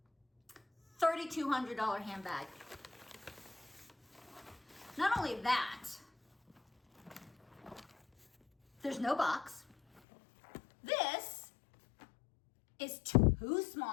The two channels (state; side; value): drops out; right; at 10.0 s